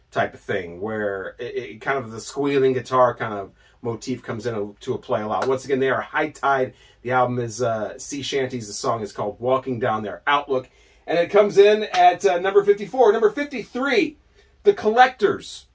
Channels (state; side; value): identical; both; correlation 1.00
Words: type of thing, where it kind of the squealing guitar kind of motif comes into a play a lot. Once again, they are High Tide. The album is Sea Shanties. The song is called Walking Down Their Outlook. And it comes in at number 54. Number 53, The Collectors.